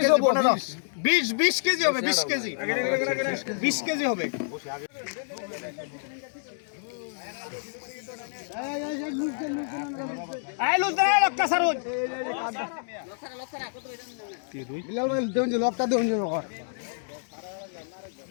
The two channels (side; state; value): right; silent; digital silence